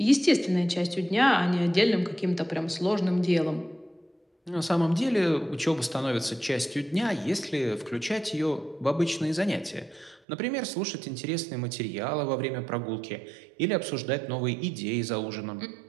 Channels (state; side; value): drops out; left; at 10.2 s